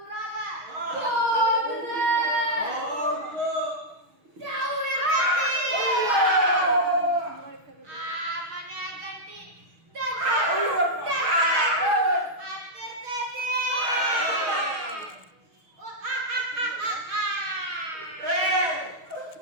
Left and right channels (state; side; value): late; left; 6.4 ms